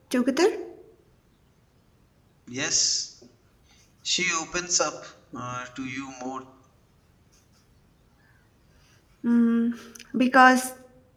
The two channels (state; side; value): identical; both; correlation 1.00